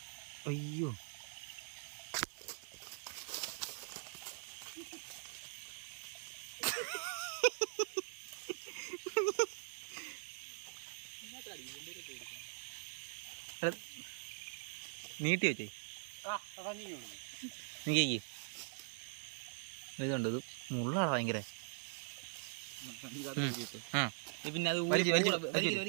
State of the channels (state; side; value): silent; left; digital silence